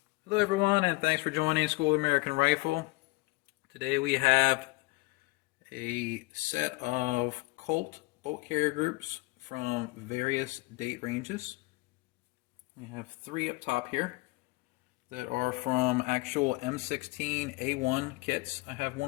Hello everyone, and thanks for joining School of American Rifle. Today we have a set of Colt bolt carrier groups from various date ranges. We have three up top here that are from actual M16A1 kits. I have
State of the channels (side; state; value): right; quieter; 23.3 dB